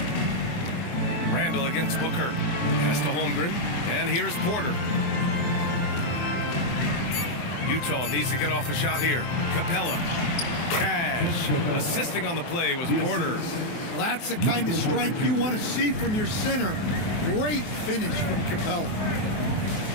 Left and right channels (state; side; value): late; right; 24 ms